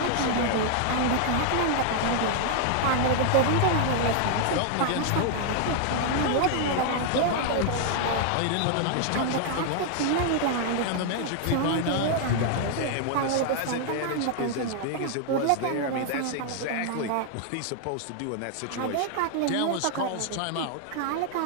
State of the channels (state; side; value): different; both; correlation 0.00